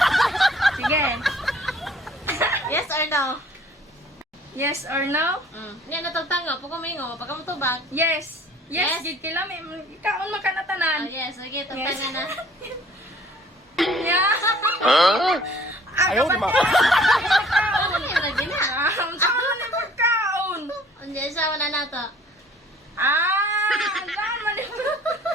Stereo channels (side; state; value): both; normal; correlation 0.54